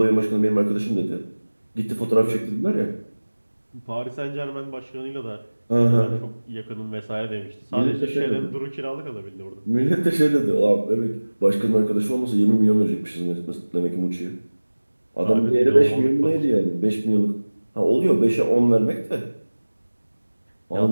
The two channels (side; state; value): both; inverted; correlation -1.00